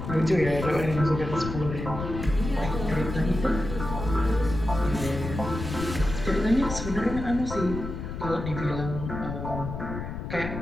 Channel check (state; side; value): noise; left; rumble, 6 dB below the sound